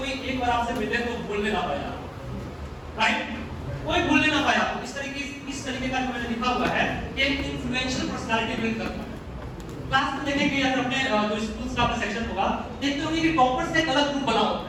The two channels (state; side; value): identical; both; correlation 1.00